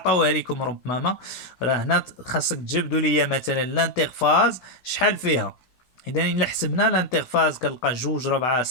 لكم ربما راه هنا خاصك تجبدوا ليا مثلا الانترفاز شحال فيها. اذا الا حسبنا الانترفاز كنلقى 2 4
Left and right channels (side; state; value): right; late; 16 ms